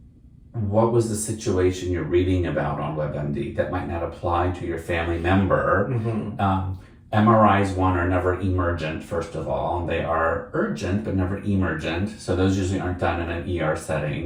what was the situation you're reading about on WebMD that might not apply to your family member? Mm-hmm. MRIs, are never emergent, first of all. They are urgent, but never emergent. So those usually aren't done in an ER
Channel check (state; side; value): identical; both; correlation 1.00